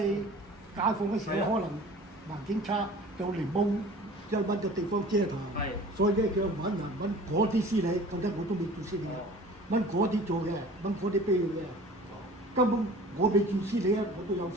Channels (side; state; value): both; normal; correlation 0.44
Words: 解放嘅時候，可能環境差，就嚟冇即係揾個地方遮台。所以咧佢揾人揾嗰啲司理，覺得我都未做司理啊，揾嗰啲做嘅，揾嗰啲碑嘅。根本我未做司理啊，我都有3